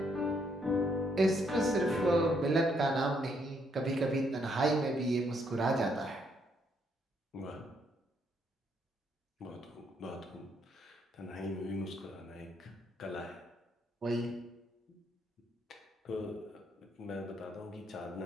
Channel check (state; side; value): normal; both; correlation 0.72